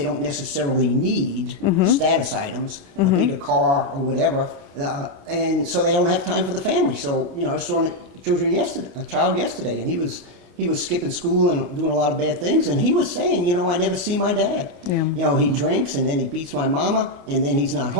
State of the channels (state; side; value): late; left; 28 ms